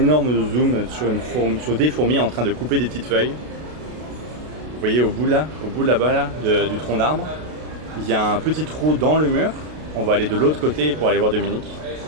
zoom sur des fourmis en train de couper des petites feuilles. Vous voyez au bout là-bas là, du tronc d'arbre, il y a un petit trou dans le mur. On va aller de l'autre côté pour aller voir Dominique.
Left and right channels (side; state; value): left; late; 32 ms